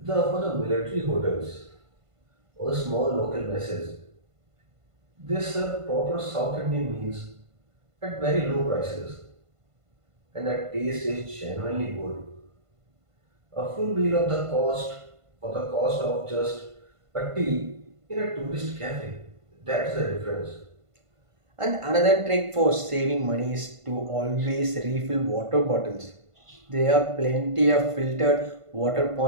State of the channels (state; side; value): late; left; 1.5 ms